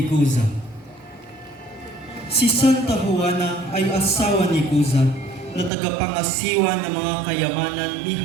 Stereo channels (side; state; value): left; drops out; at 5.7 s